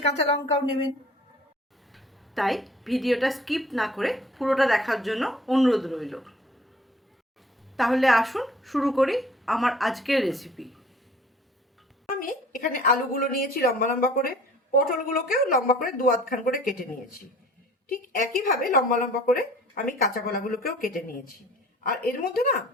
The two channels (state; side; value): normal; both; correlation 0.50